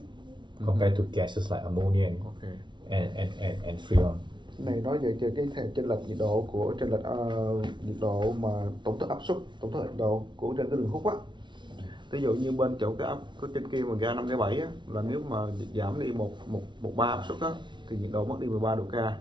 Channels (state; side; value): late; left; 0.23 ms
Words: compared to gases like ammonia and freon. Này nói về cái chênh lệch nhiệt độ của nhiệt độ mà tổng thức áp suất, tổng thức nhiệt độ của trên cái đường hút á. Ví dụ như bên chỗ cái trên kia mà ga 5 cái 7 á, là nếu mà giảm đi một bar áp suất á thì nhiệt độ mất đi 13 độ K.